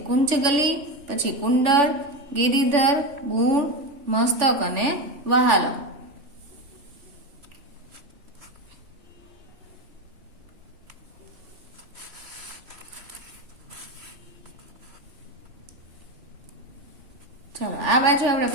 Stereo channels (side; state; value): left; late; 3.4 ms